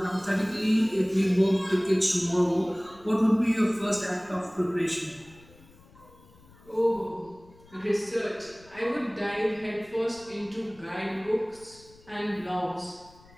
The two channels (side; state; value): left; noise; rumble, 25 dB below the sound